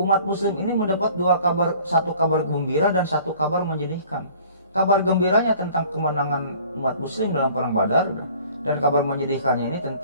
muslim ini mendapat dua kabar, satu kabar gembira dan satu kabar menyedihkan. Kabar gembiranya tentang kemenangan umat muslim dalam perang Badar, dan kabar menyedihkannya ini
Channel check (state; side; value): inverted; both; correlation -0.51